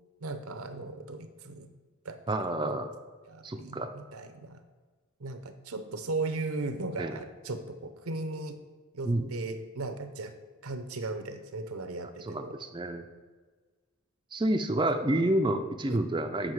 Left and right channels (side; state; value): both; normal; correlation 0.51